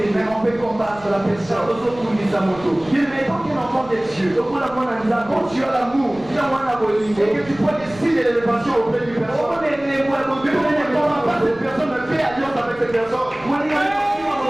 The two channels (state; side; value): noise; right; rumble, 21 dB below the sound